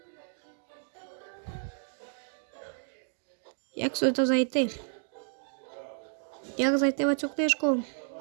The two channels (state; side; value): silent; left; digital silence